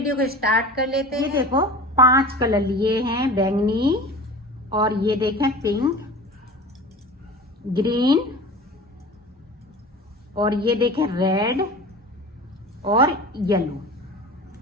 को स्टार्ट कर लेते हैं। ये देखो 5 कलर लिए हैं, बैंगनी और ये देखें पिंक, ग्रीन और ये देखें रेड और येलो।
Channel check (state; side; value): normal; both; correlation 0.37